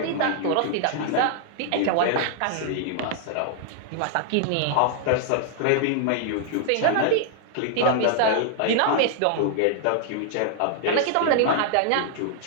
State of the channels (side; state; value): both; different; correlation 0.00